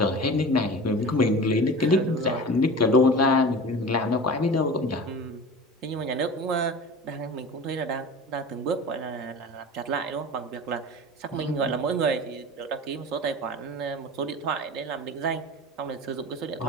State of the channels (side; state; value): both; normal; correlation 0.35